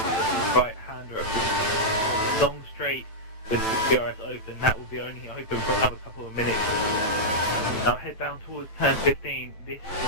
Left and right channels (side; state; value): right; late; 9.1 ms